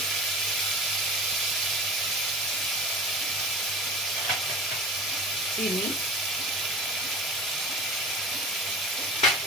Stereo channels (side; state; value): both; normal; correlation 0.36